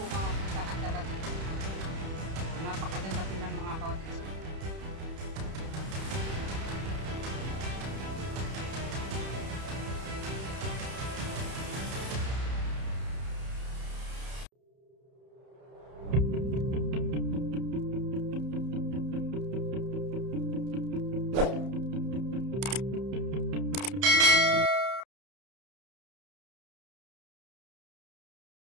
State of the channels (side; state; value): left; late; 31 ms